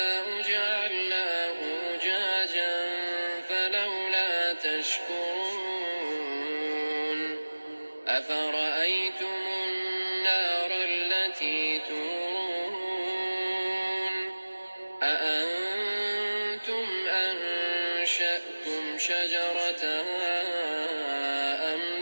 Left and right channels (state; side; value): inverted; both; correlation -1.00